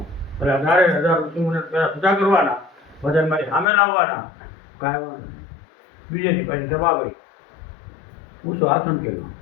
એટલે 18,000 ઋષિમુનિ પેલા પૂજા કરવાના, બધા મારી સામે લાવવાના, ગાયવાના. બીજેથી પાછી સભા કરી ઊંચો આસન કર્યો.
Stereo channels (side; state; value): right; drops out; at 3.7 s